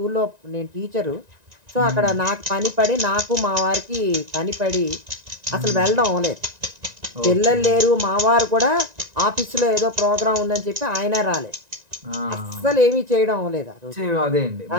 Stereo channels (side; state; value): left; late; 1.9 ms